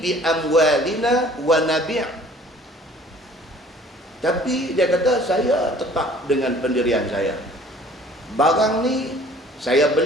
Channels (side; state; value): both; normal; correlation 0.52